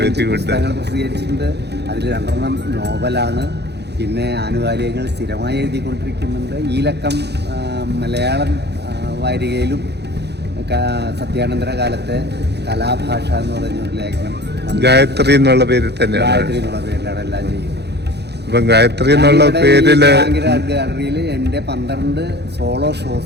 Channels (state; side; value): late; left; 0.49 ms